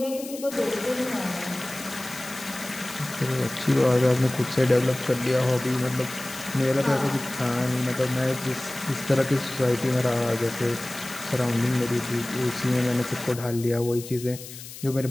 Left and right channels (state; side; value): noise; left; hiss, 13 dB below the sound